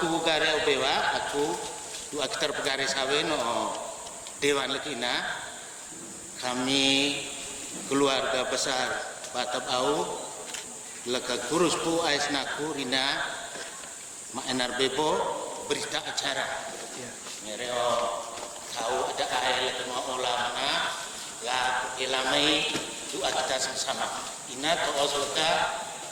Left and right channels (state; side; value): identical; both; correlation 1.00